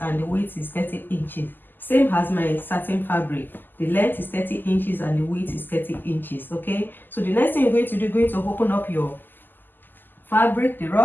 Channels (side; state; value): right; late; 0.090 ms